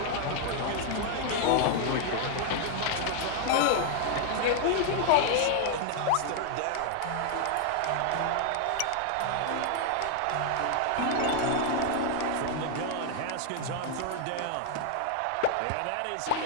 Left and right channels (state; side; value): different; both; correlation 0.00